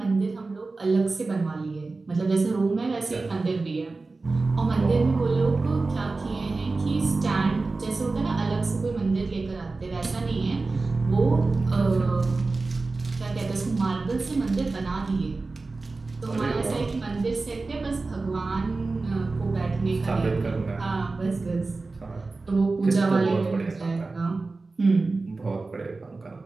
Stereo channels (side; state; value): left; quieter; 3.6 dB